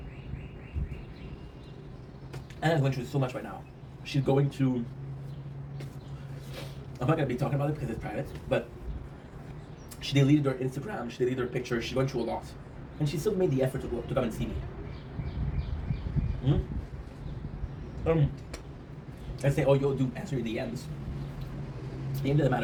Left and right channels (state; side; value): identical; both; correlation 1.00